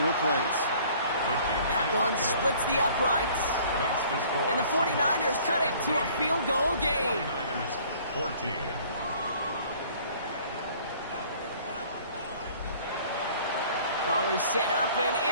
plays. That one splits the uprights. And the 49ers cut it to a field goal game. 49ers 14. Ball is set up, and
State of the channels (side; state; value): both; inverted; correlation -0.54